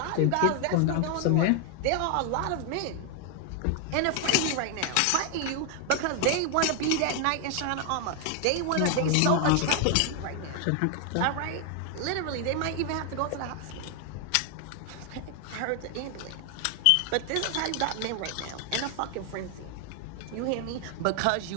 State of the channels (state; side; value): different; both; correlation 0.00